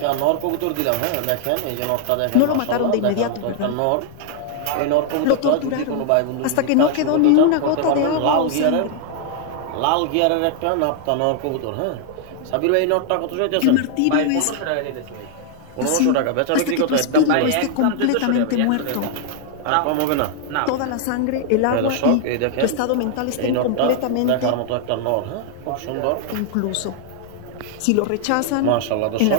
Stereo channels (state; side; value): different; both; correlation 0.00